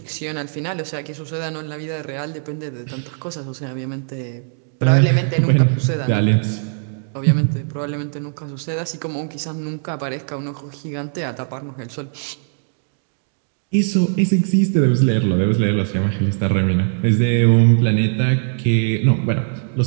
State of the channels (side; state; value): left; silent; digital silence